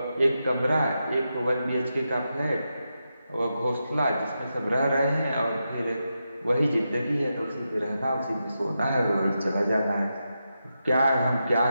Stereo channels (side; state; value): both; inverted; correlation -0.88